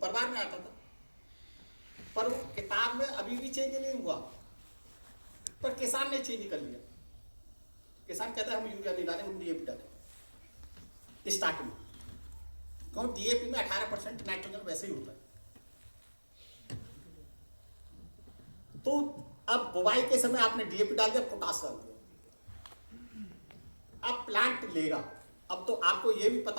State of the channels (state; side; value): inverted; both; correlation -1.00